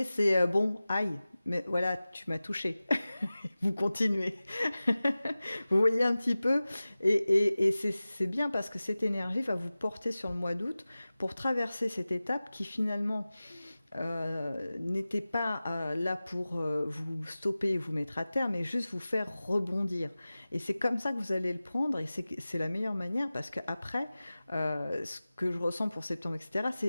c'est bon, aïe, mais voilà, tu m'as touché. Vous continuez. Vous voyez un petit peu, et c'est bien parce que cette énergie va vous porter sur le mois d'août pour traverser cette étape qui finalement n'était pas là pour vous stopper et vous mettre à terre, mais juste vous faire rebondir. Et c'est comme ça que vous allez le prendre, et c'est la meilleure manière, parce qu'après, ce que je ressens pour septembre, etc.,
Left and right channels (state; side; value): inverted; both; correlation -0.97